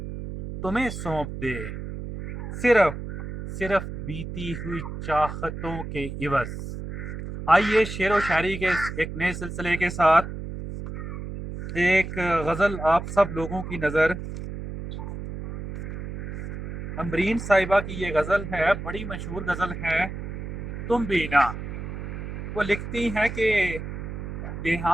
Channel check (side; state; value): right; noise; hum, 7 dB below the sound